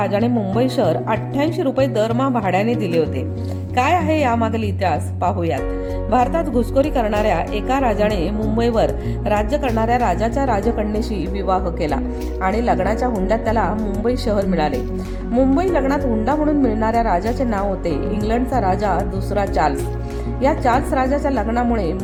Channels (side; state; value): both; identical; correlation 1.00